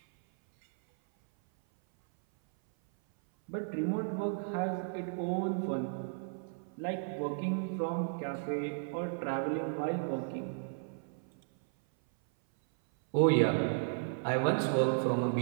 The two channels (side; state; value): left; silent; 55 dB below the other